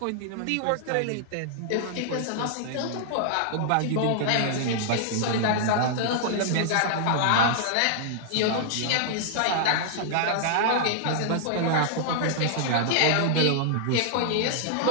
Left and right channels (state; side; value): different; both; correlation -0.01